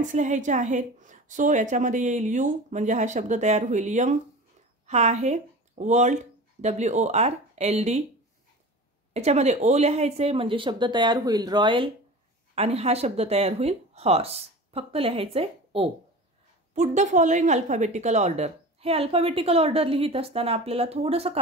लिहायचे आहेत। सो याच्यामध्ये येईल यू म्हणजे हा शब्द तयार होईल यंग, हा आहे वर्ल्ड WORLD, याच्यामध्ये ओ लिहायचे म्हणजे शब्द तयार होईल रॉयल आणि हा शब्द तयार होईल हॉर्स, फक्त लिहायचे ओ। Put the following alphabetical order, हे अल्फाबेटिकल ऑर्डर लिहित असताना आपल्याला थोडंसं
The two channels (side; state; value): both; normal; correlation 0.35